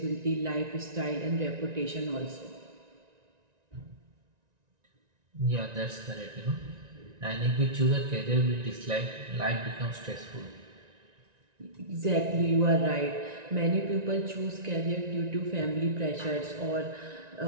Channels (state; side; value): late; left; 1.9 ms